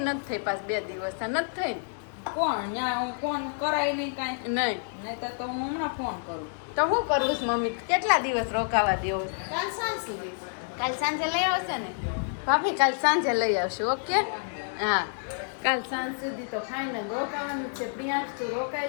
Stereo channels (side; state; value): right; silent; 59 dB below the other